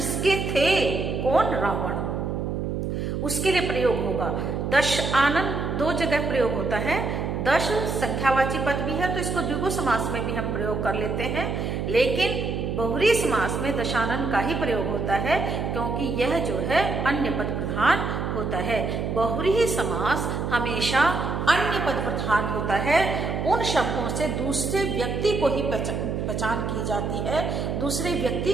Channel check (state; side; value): noise; right; hum, 2 dB below the sound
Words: थे, कौन, रावण, उसके लिए प्रयोग होगा। 10 आनन 2 जगह प्रयोग होता है। 10 संख्यावाची पद भी है, तो इसको द्विगु समास में भी हम प्रयोग कर लेते हैं, लेकिन बहुव्रीहि समास में दशानन का ही प्रयोग होता है, क्योंकि यह जो है अन्य पद प्रधान होता है। बहुव्रीहि समास हमेशा अन्य पद प्रधान होता है, उन शब्दों से दूसरे व्यक्ति को ही पहचान की जाती है, दूसरे व्यक्ति